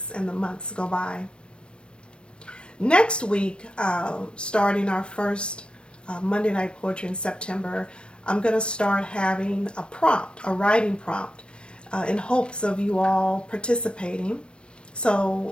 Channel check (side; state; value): right; late; 0.057 ms